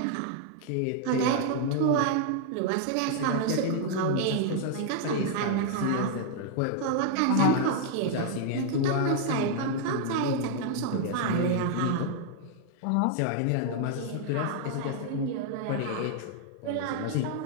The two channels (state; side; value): different; both; correlation 0.00